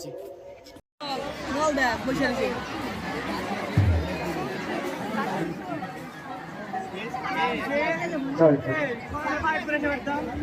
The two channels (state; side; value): identical; both; correlation 1.00